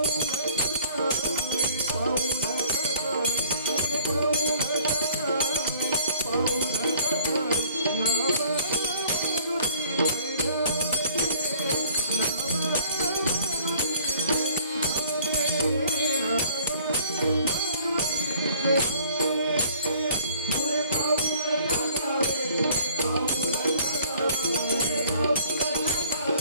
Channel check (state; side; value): inverted; both; correlation -0.55